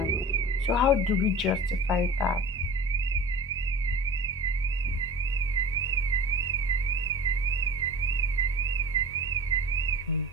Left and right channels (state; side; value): normal; both; correlation 0.37